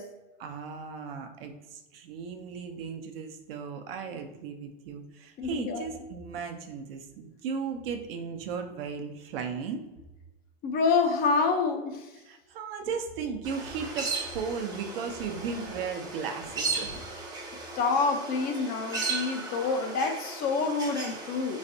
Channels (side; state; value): both; normal; correlation 0.04